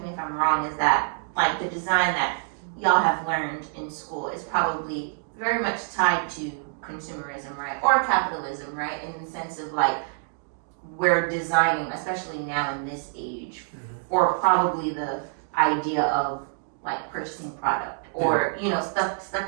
me if I'm wrong, is that like the design that y'all have learned in school is probably very much tied to consumerism, right? Or capitalism, right? In the sense of like we're designing, especially now in this age, or probably the idea of like purchasing product or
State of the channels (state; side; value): silent; left; digital silence